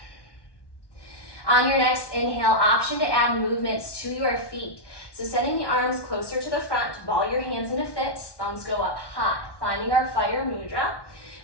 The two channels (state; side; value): late; right; 1.1 ms